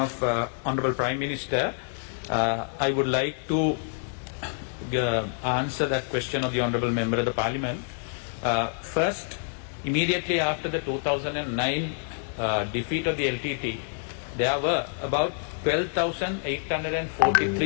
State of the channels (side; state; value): right; silent; digital silence